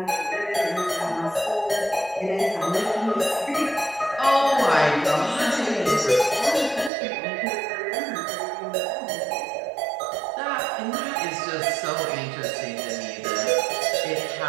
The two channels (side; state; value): left; drops out; at 6.9 s